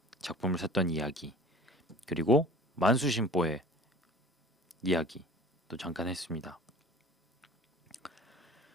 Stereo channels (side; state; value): both; normal; correlation 0.44